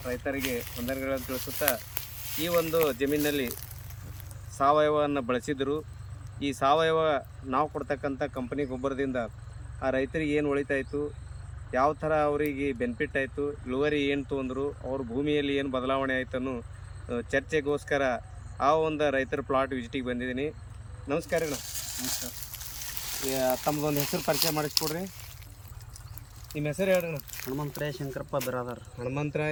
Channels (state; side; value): identical; both; correlation 1.00